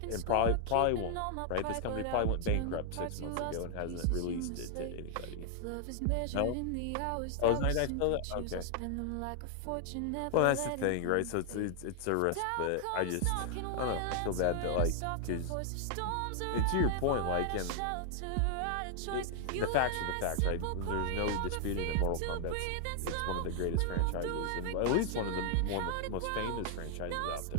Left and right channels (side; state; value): both; different; correlation 0.00